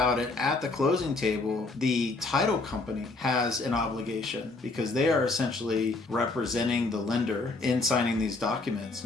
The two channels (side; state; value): right; quieter; 3.4 dB